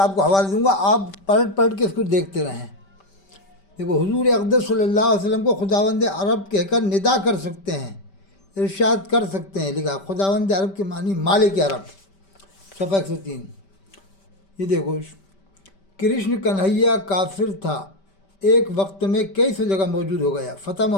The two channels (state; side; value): late; right; 5.1 ms